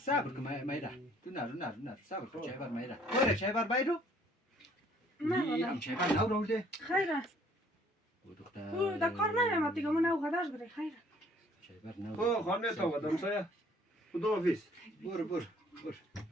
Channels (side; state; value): both; normal; correlation 0.59